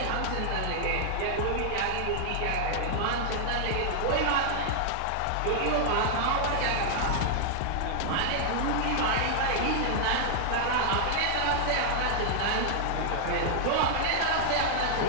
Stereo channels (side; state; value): both; different; correlation 0.00